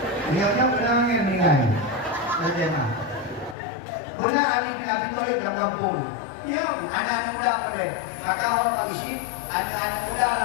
Penyawatnya pernah meninggal. Bagaimana? Pernah Ali bin Abi Thalib dalam kampung. Ya, anak muda pada. Maka orang mengisi anak muda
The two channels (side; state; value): right; drops out; at 3.6 s